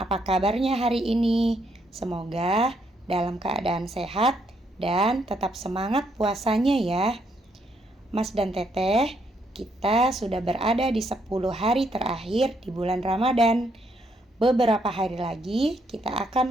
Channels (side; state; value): both; normal; correlation 0.74